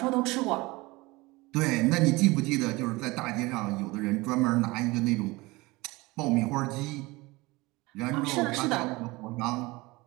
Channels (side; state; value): left; quieter; 22.4 dB